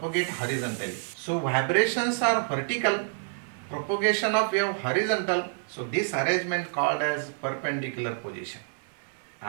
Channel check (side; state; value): left; silent; 59 dB below the other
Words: horizontally. So vibrations are vertical, propagation of wave horizontal. So this arrangement called as perpendicular position.